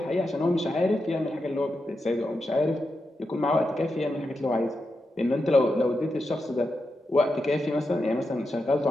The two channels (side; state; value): both; normal; correlation 0.87